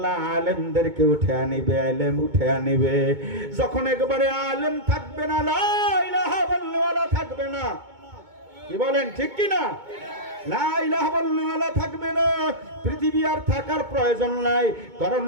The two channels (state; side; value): late; left; 2.2 ms